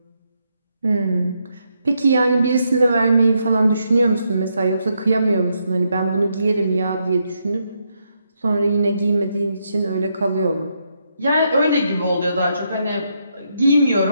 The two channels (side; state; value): both; inverted; correlation -0.79